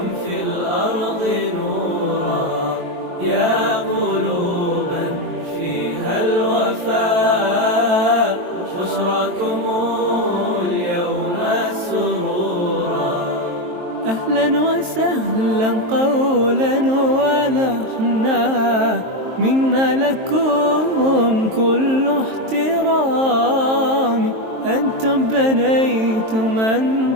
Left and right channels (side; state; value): left; late; 23 ms